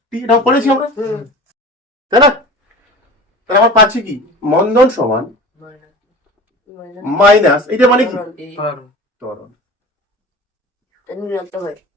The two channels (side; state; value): both; normal; correlation 0.37